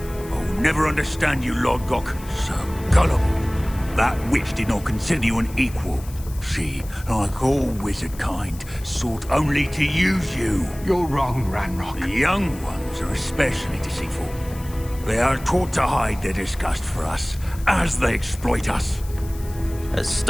I'll never understand you, Lord Gok. So gullible. That witch did not consider you an equal. She, like all wizard kind, sought only to use you. You're wrong, Ranrock. The young ones are especially deceitful. They are taught to hide their disgust for us, as they exploit us.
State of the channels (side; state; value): left; noise; hiss, 19 dB below the sound